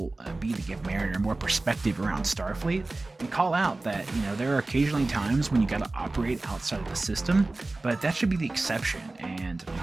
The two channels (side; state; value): left; quieter; 3.1 dB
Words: be to give Mariner more perspective around Starfleet and call out that, there are occasionally times when you gotta operate outside of the system, but that should be the exception and